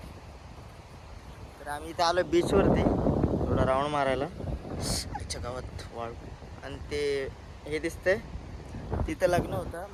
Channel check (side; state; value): both; identical; correlation 1.00